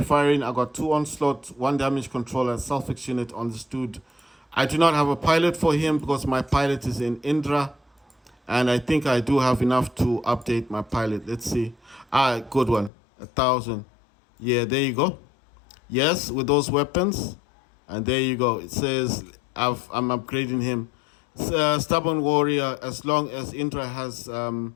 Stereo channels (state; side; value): drops out; right; at 12.9 s